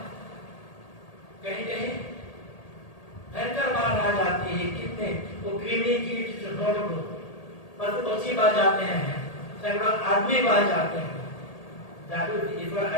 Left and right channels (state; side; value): late; right; 1.8 ms